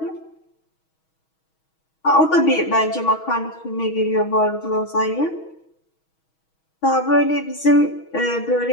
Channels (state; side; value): late; right; 6.3 ms